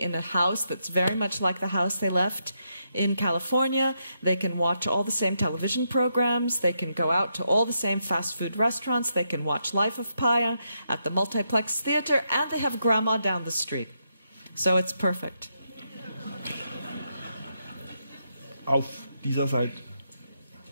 a house that's very much like the house they left in California. They can watch all the same television programs. They can go out to all the same fast food restaurants. They can watch Life of Pi at the multiplex theater, and they have grandma down the street. So it's perfect. Auf dieser Seite.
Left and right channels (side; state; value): both; inverted; correlation -0.82